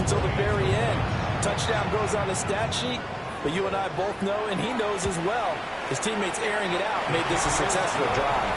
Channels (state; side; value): identical; both; correlation 1.00